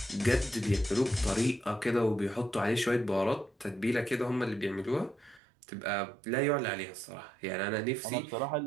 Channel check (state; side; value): drops out; left; at 5.4 s